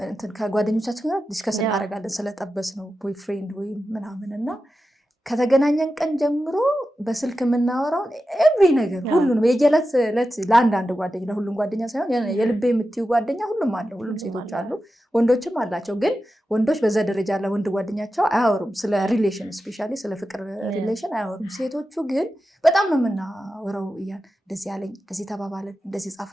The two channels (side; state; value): both; normal; correlation 0.92